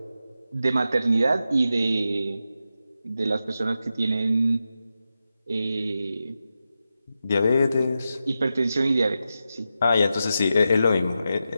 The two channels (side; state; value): both; inverted; correlation -0.90